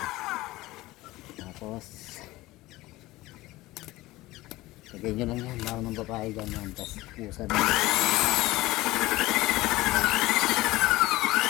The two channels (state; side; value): quieter; right; 18.7 dB